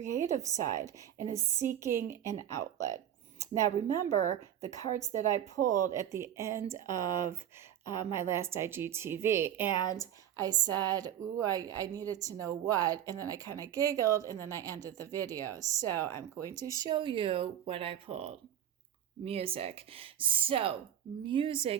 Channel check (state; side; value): quieter; left; 10.5 dB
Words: side and is seeking an outlet. Now, remember the cards that I pulled at the end of my last IGTV, and I said, ooh, I needed to know what, and then I kind of giggled, and then I ended the video. So I'm going to show you what I pulled. Music. So